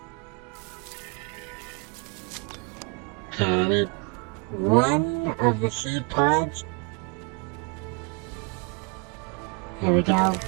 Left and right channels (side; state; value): left; quieter; 32.7 dB